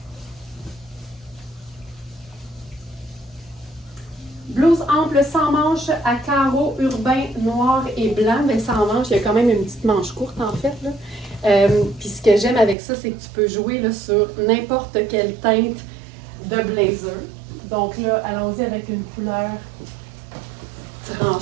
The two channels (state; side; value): drops out; left; at 12.8 s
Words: blouse ample sans manches à carreaux urbains noir et blanc. Mais sans manches, il y a quand même une petite manche courte en fait. Puis ce que j'aime avec ça, c'est que tu peux jouer là, sur n'importe quelle teinte de blazer. Donc là, allons-y avec une couleur